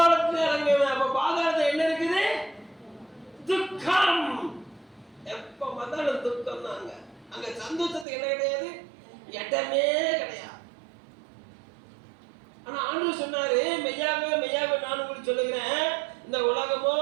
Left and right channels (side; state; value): left; drops out; at 8.1 s